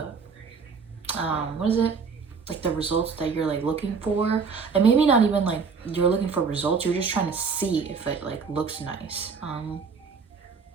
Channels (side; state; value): left; quieter; 5.5 dB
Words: what is it, like the results that you're like looking for. And maybe not even like you're looking for results, you're just trying to see if it like looks nice.